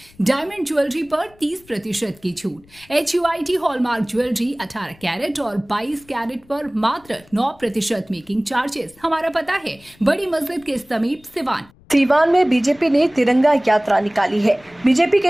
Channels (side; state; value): left; noise; rumble, 28 dB below the sound